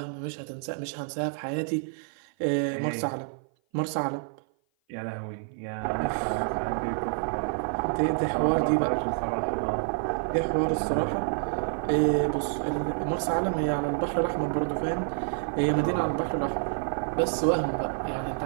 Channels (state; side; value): silent; left; 55 dB below the other